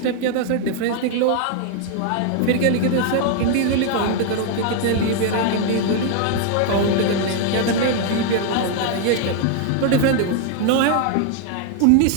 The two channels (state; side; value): different; both; correlation 0.00